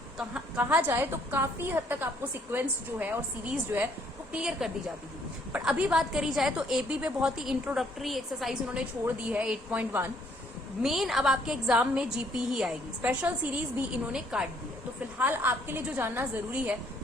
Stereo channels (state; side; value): normal; both; correlation 0.66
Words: कहा जाए तो काफी हद तक आपको सिक्वेंस जो है और सीरीज जो है वो क्लियर कर दी जाती थी। पर अभी बात करी जाए तो एपी पे बहुत ही इंट्रोडक्टरी एक्सरसाइज उन्होंने छोड़ दी है 8.1। मेन अब आपके एग्जाम में जीपी ही आएगी, स्पेशल सीरीज भी इन्होंने काट दी है। तो फिलहाल आपके लिए जो जानना जरूरी है